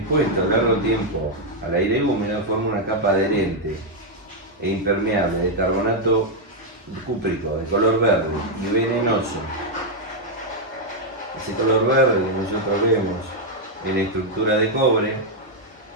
a largo tiempo al aire húmedo, forma una capa adherente e impermeable de carbonato cúprico de color verde y venenoso. Ese color verde que nosotros vemos en la estructura de cobre,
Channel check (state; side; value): normal; both; correlation -0.01